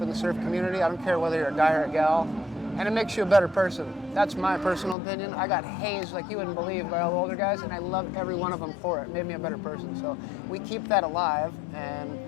the surf community. I don't care whether you're a guy or a gal. And it makes you a better person. That's my personal opinion. I got hazed like you wouldn't believe by all the older guys, and I love every one of them for it. It made me a better person. So we keep that alive, and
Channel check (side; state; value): right; drops out; at 5.0 s